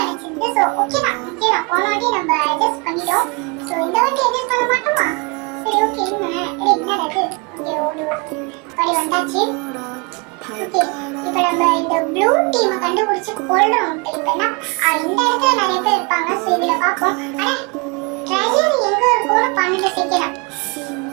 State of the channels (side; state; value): left; quieter; 30.1 dB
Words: ஸோ ஓகேதான் போன வாட்டி நம்ம அட்ஜஸ்ட் பண்ணிட்டோம். ஸோ இந்த வாட்டி அட்ஜஸ்ட் பண்ண மாட்டோமா? சரி ஓகே என்ன இருக்கு இங்கே ஒரு படி வந்தாச்சு. ஓகே இப்போ நம்ம இந்த ப்ளூ டீமை கண்டுபிடிச்சு கொள்றோம். இப்போ என்ன இந்த இடத்துல நிறைய பேர் இருப்பாங்க. ஸோ இதில் பார்ப்போம். அட ட்ரெஷர் எங்க இருக்கும்னு 12 செகண்ட்.